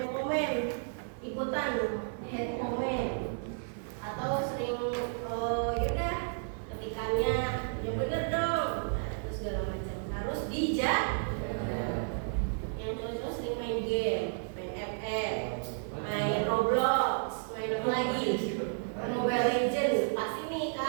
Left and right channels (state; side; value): silent; left; 55 dB below the other